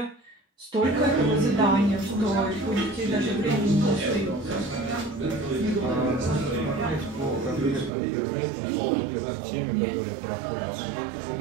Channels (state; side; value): drops out; left; at 7.9 s